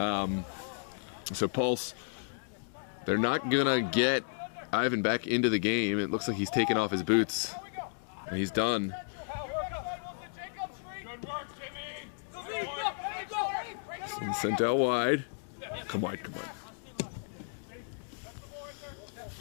Pulse, they're not going to get Ivan back into the game. It looks like he's taken off his boots, and he's done. Sent out wide. Come wide.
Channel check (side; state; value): right; silent; digital silence